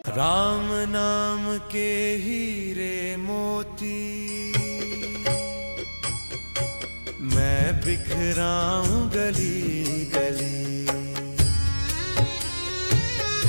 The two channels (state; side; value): inverted; both; correlation -1.00